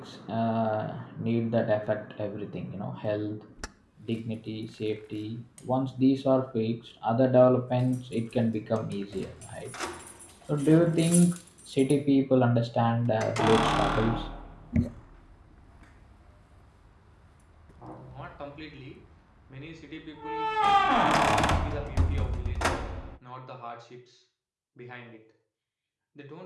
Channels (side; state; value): both; identical; correlation 1.00